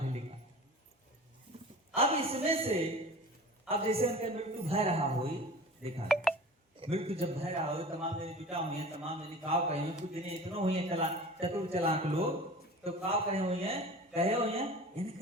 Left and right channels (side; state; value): both; normal; correlation 0.38